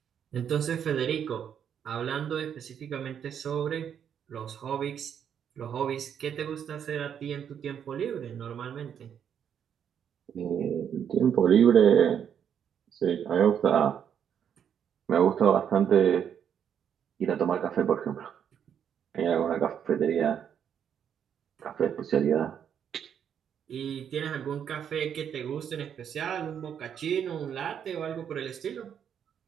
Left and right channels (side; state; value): left; quieter; 8.5 dB